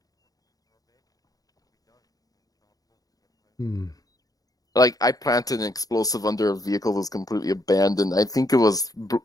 Like, I planted an explosive under a vehicle that was completely abandoned. I think it was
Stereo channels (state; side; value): late; right; 0.18 ms